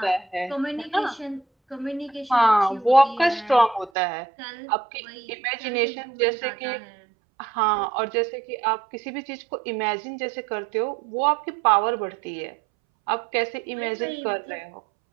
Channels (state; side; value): drops out; left; at 3.9 s